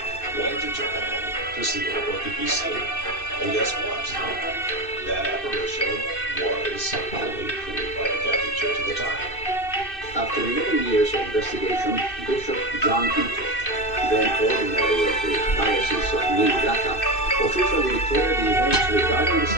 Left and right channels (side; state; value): right; late; 2.6 ms